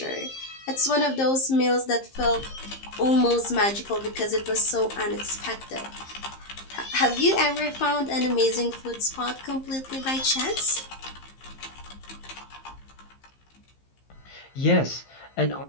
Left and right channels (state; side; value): late; right; 15 ms